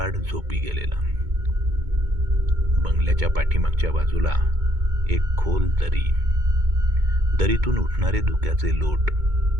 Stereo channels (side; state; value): left; late; 2.2 ms